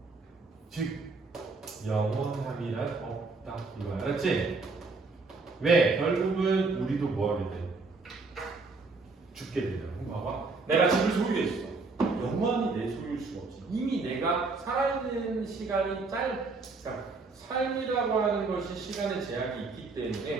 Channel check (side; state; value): left; quieter; 3.9 dB